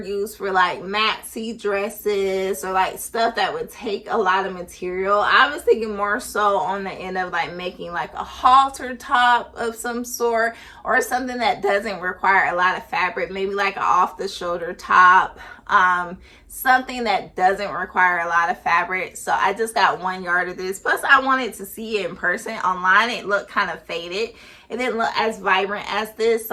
used for like maxi dresses or like stuff that would take a lot of material. I was thinking more so on the end of like making like a halter top of some sort, or something that doesn't require a lot of fabric, maybe like an off the shoulder top, something that doesn't require a lot of fabric. So I just got 1 yard of this. Plus I wanted to see it in person. Online it looked kind of faded. It didn't look as vibrant as this,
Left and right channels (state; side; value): identical; both; correlation 1.00